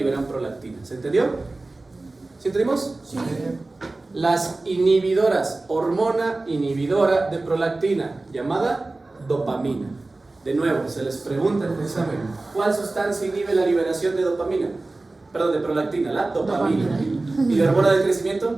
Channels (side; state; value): left; quieter; 3.1 dB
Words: prolactina. ¿Se entendió? ¿Sí entendimos? Sí. Las inhibidoras, hormona inhibidora de prolactina, llamada dopamina. De nuevo, se les pregunta en el examen, ¿cuál sustancia inhibe la liberación de dopamina? Perdón, de prolactina, la dopamina. ¿Y la hormona del